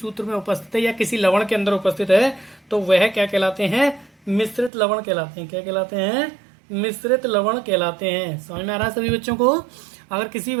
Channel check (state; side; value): drops out; left; at 4.7 s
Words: में उपस्थित है या किसी लवण के अंदर उपस्थित है तो वह क्या कहलाते हैं? मिश्रित लवण कहलाते हैं। क्या कहलाते हैं? मिश्रित लवण कहलाते हैं। समझ में आ रहा है सभी बच्चों को? अगर किसी